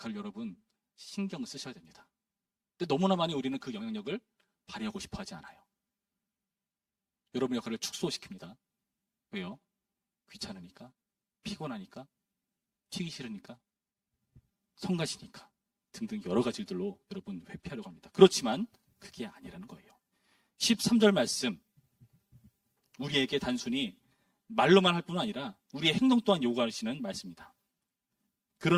여러분 신경을 쓰셔야 됩니다. 근데 너무나 많이 우리는 그 영향력을 발휘하고 싶어 하지 않아요. 여러분의 역할을 축소시킵니다. 왜요? 귀찮으니까, 피곤하니까, 튀기 싫으니까, 성가시니까 등등 여러 가지 일들로 여러분 회피하려고 합니다. 그렇지만 그게 아니라는 거예요. 13절 말씀, 우리에게 단순히 말로만 할 뿐만 아니라 우리의 행동 또한 요구하시는 말씀입니다.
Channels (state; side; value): identical; both; correlation 1.00